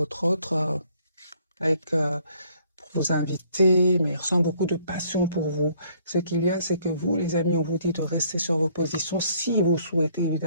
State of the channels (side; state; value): both; inverted; correlation -0.63